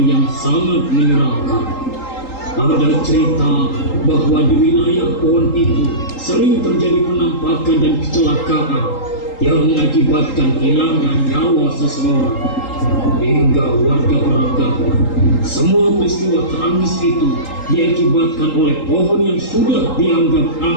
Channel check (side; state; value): right; late; 3.8 ms